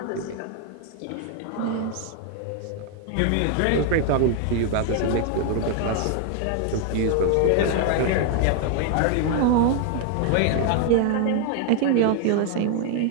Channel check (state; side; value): different; both; correlation 0.00